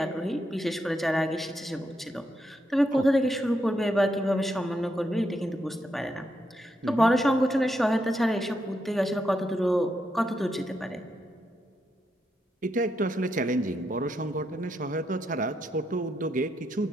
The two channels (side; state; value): both; normal; correlation 0.81